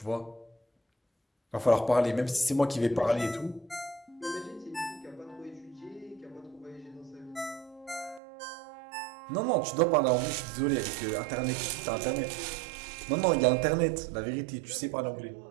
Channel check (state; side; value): drops out; left; at 8.2 s